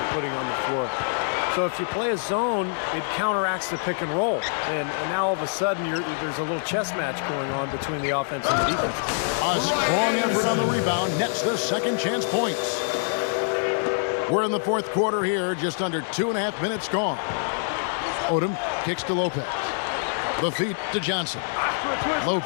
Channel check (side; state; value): right; silent; digital silence